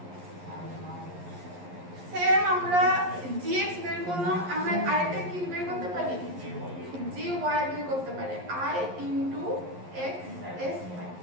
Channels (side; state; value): left; late; 11 ms